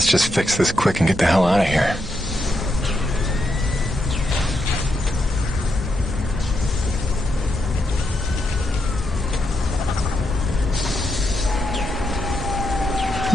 just fix this quick and get the hell out of here.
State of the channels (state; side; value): normal; both; correlation 0.82